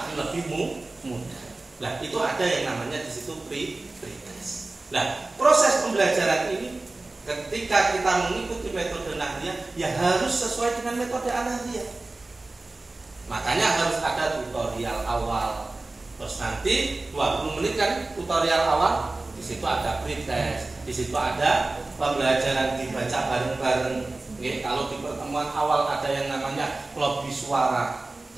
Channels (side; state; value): left; quieter; 3.1 dB